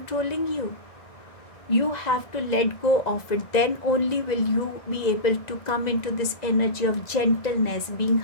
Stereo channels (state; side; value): late; right; 1.9 ms